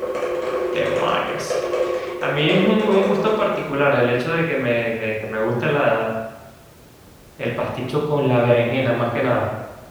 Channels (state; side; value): identical; both; correlation 1.00